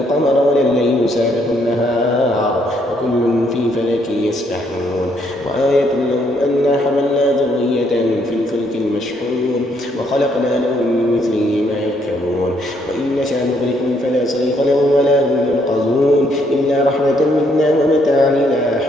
ولا الليل سابق النهار وكل في فلك يسبحون. وآية لهم أنا حملنا ذريتهم في الفلك المشحون وخلقنا لهم من مثله ما يركبون. وإن نشأ نغرقهم فلا صريخ لهم ولا هم ينقذون إلا رحمة منا ومتاعا إلى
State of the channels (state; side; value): normal; both; correlation 0.71